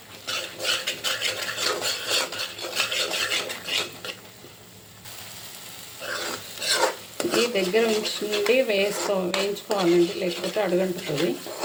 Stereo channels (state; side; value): identical; both; correlation 1.00